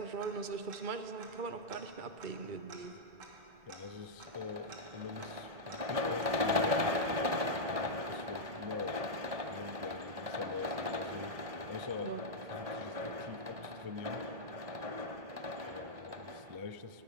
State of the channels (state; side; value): late; left; 1.7 ms